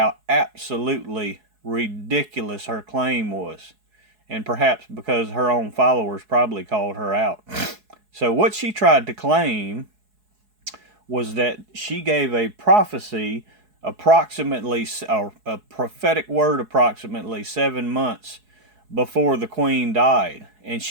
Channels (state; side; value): late; left; 4.7 ms